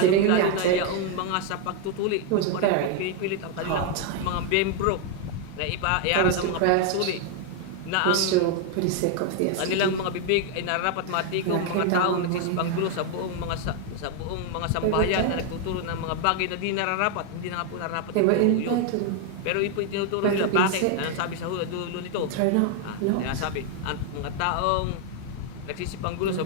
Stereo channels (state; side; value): different; both; correlation 0.01